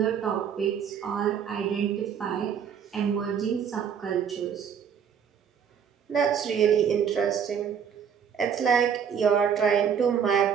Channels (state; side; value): quieter; left; 7.7 dB